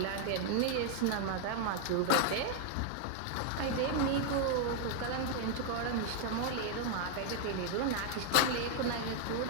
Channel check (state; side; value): different; both; correlation 0.00